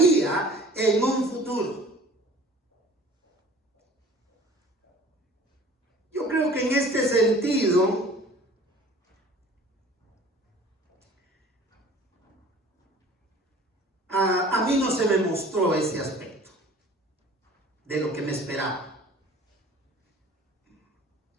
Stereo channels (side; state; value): both; normal; correlation 0.47